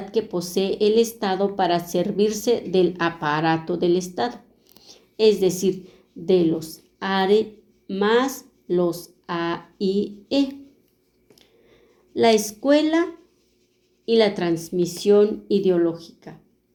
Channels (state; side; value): identical; both; correlation 1.00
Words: que posee el Estado para servirse del aparato del Estado, es decir, de los ARE más los AIE. La escuela y la transmisión ideológica.